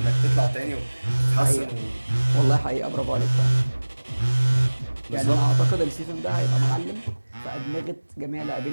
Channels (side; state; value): both; inverted; correlation -1.00